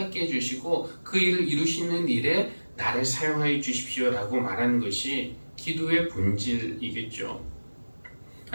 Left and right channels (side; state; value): both; inverted; correlation -1.00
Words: 해주시고 그 일을 이루시는 일에 나를 사용하여 주십시오 라고 말하는 것이 기도의 본질이겠죠.